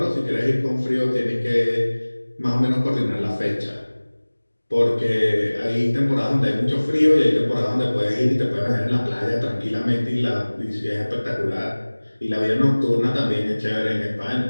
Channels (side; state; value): both; inverted; correlation -1.00